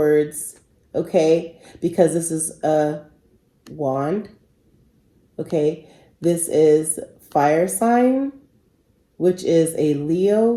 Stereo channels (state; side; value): identical; both; correlation 1.00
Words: okay? Because this is a wand, okay? This is fire sign, which is a